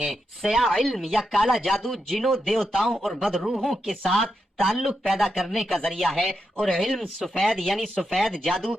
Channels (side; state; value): both; normal; correlation 0.85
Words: سیاہ علم یا کالا جادو جنوں، دیوتاؤں اور بدروحوں کے ساتھ تعلق پیدا کرنے کا ذریعہ ہے، اور علم سفید یعنی سفید جادو